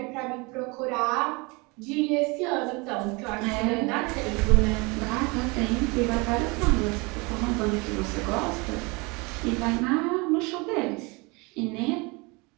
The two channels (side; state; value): left; quieter; 27.4 dB